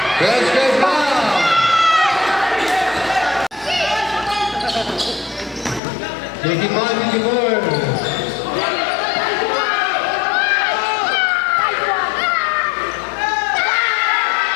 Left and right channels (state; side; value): drops out; right; at 5.8 s